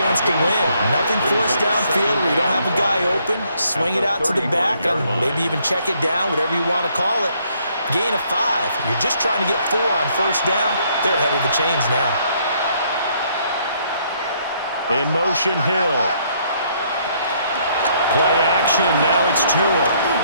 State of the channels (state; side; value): inverted; both; correlation -0.68